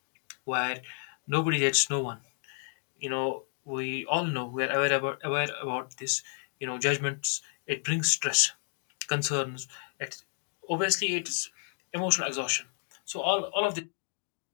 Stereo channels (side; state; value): right; silent; digital silence